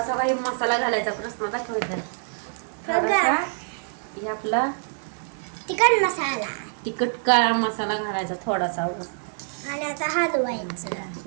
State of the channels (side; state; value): left; silent; digital silence